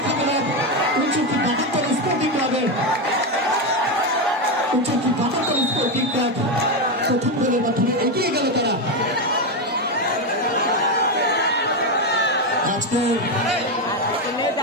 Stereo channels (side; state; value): both; normal; correlation 0.10